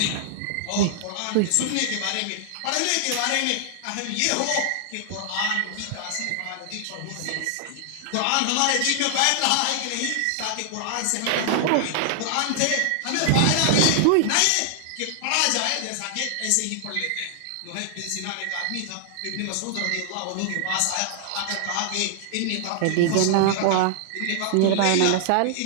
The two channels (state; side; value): different; both; correlation 0.00